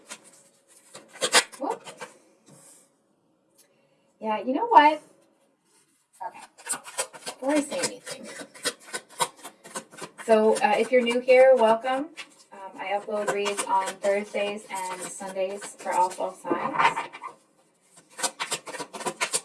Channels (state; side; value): identical; both; correlation 1.00